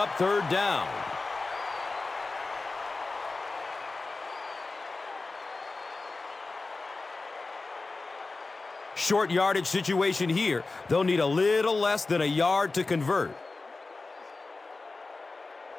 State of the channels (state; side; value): quieter; right; 3.6 dB